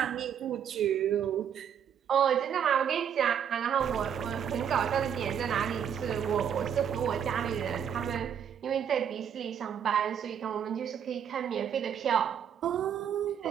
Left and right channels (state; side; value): quieter; left; 8.4 dB